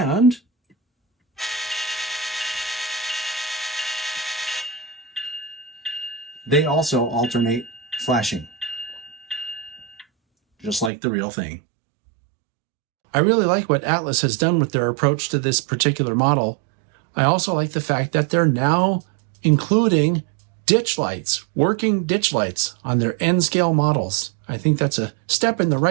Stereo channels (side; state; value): left; drops out; at 10.9 s